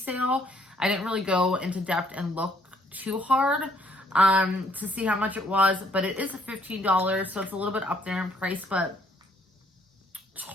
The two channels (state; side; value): normal; both; correlation 0.66